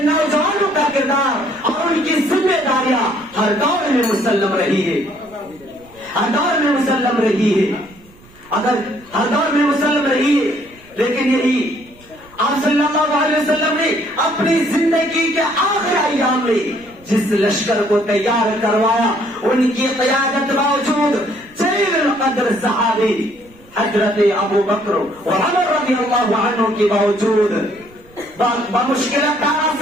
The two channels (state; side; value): noise; right; rumble, 26 dB below the sound